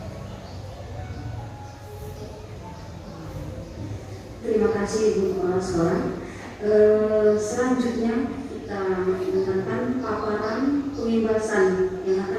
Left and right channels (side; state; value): both; identical; correlation 1.00